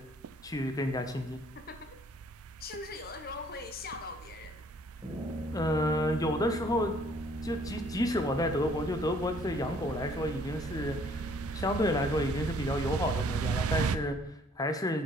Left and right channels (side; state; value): both; normal; correlation 0.60